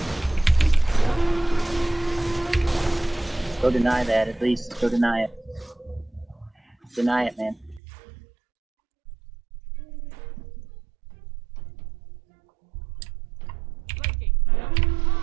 Go deny that at least. Go deny it. Deny it, man. Flanking.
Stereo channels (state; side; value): drops out; left; at 7.8 s